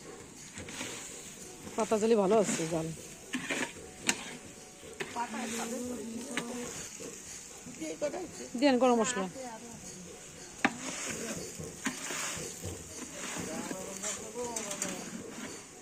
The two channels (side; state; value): both; identical; correlation 1.00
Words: পাতা জলে ভালো আছে জাল। দেন গরম মশলা।